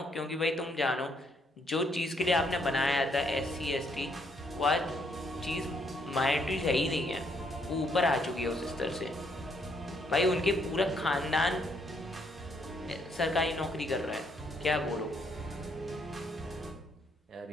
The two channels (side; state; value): both; normal; correlation 0.71